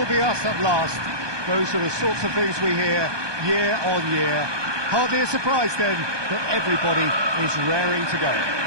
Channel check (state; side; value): late; left; 1.2 ms